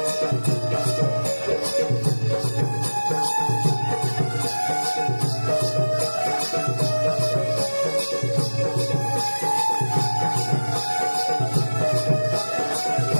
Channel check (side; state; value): both; inverted; correlation -1.00